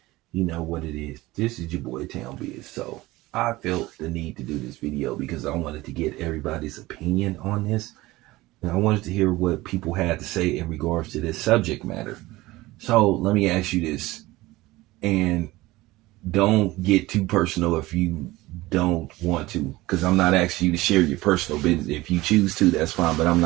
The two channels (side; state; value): left; quieter; 19.2 dB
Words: You know what it is. This is your boy Town Biz. So I felt the need to do this video because I wanted to get everybody's opinion on this. And I wanted to hear what people had to say in regards to this subject matter. So let me ask you this. And don't get too personal if you don't want to, because I'm not asking you to share your personal business. If you choose to, that's fine, but I'm